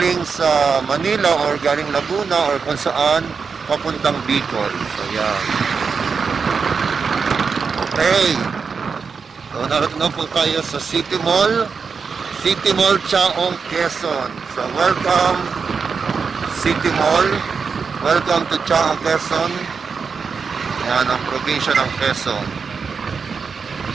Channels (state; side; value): quieter; left; 5.5 dB